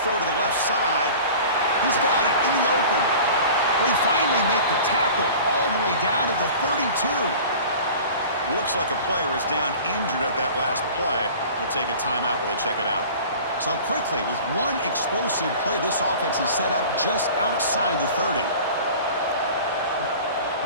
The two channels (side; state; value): both; inverted; correlation -0.41